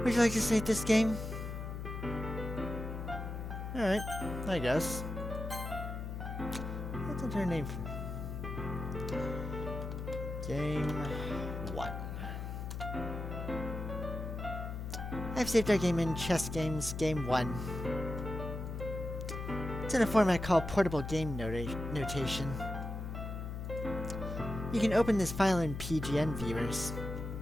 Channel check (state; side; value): noise; left; hum, 6 dB below the sound